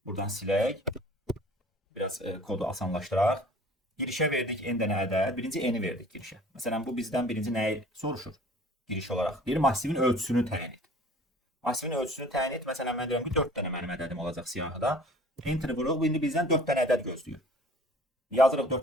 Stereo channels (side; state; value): both; normal; correlation 0.49